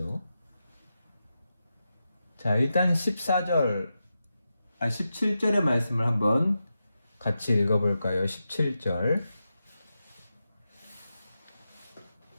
자, 일단 17절의 말씀을 한번 같이 읽어볼까요? 17절.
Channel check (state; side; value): inverted; both; correlation -0.89